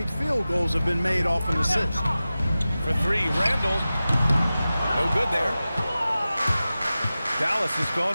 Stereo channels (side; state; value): both; inverted; correlation -0.95